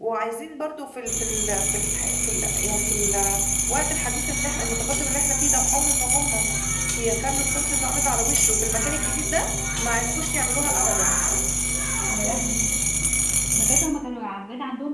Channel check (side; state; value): both; identical; correlation 1.00